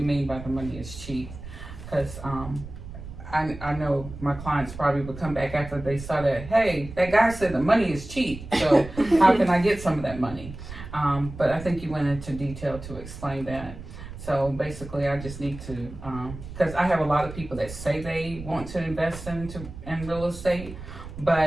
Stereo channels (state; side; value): noise; right; rumble, 12 dB below the sound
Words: by the money is cheap? Because I know my clients probably would come back after they saw that, hey, that guy said the money is cheap, so how can I get some of that money? But I think you went into detail to explain that. So basically, I just need to, because I have a lot of people that say they want to invest in real estate,